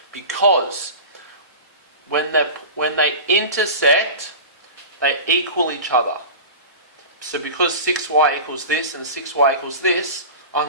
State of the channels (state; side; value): inverted; both; correlation -0.32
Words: because when they intersect, they equal each other. So because 6y equals this and 6y equals this, I